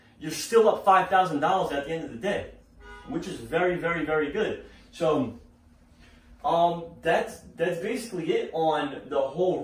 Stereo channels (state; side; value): identical; both; correlation 1.00